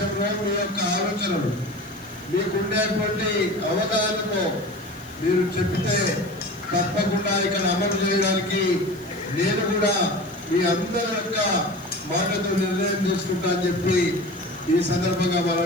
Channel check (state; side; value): noise; left; hiss, 25 dB below the sound